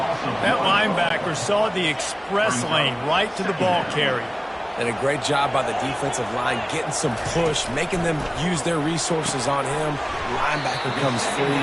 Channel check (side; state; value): both; identical; correlation 1.00